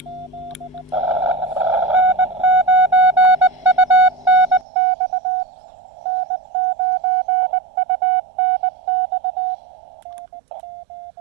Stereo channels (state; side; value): drops out; left; at 4.7 s